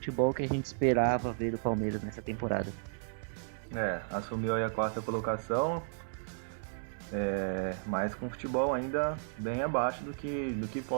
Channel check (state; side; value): silent; left; 55 dB below the other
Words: que a gente esperava ver do Palmeiras nessa temporada. Assumiu aí a 4ª colocação, mas com futebol ainda bem abaixo do que